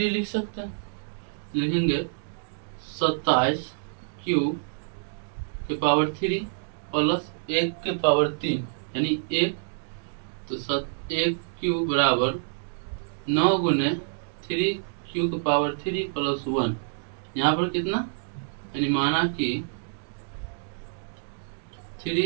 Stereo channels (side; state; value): left; silent; digital silence